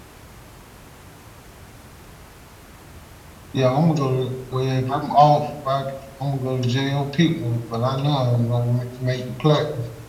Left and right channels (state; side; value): identical; both; correlation 1.00